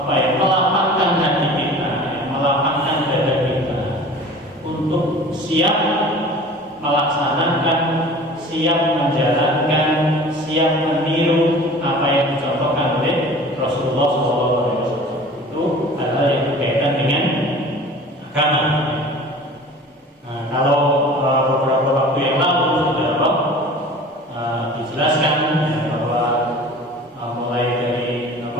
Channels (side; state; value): both; normal; correlation 0.42